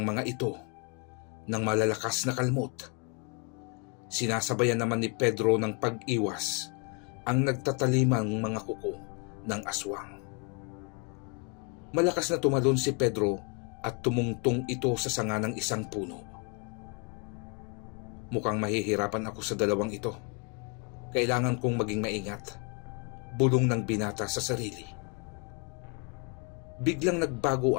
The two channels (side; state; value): right; quieter; 34.4 dB